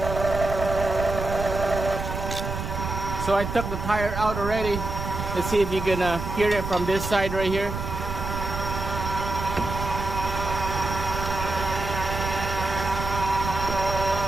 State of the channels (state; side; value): noise; right; rumble, 5 dB below the sound